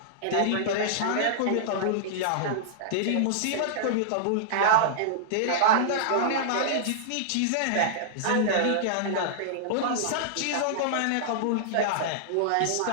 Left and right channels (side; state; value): both; different; correlation -0.02